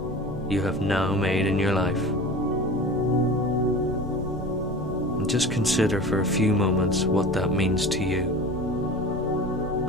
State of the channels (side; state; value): both; normal; correlation 0.35